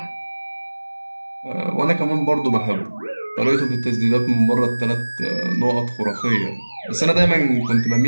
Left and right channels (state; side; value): inverted; both; correlation -1.00